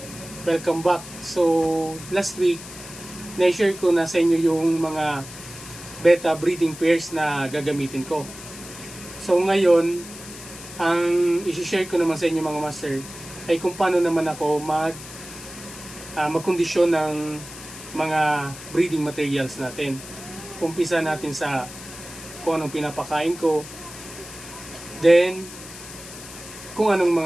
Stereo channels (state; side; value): noise; left; hiss, 14 dB below the sound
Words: welcome back. So last week, na-share ko na sa inyo yung mga beta breeding pairs na gagamitin ko. So ngayon, ang isi-share ko naman sa inyo mga master ay kung paano naman ako magkondisyon ng mga breeding materials natin. Umpisa natin sa kung anong pinapakain ko, then kung anong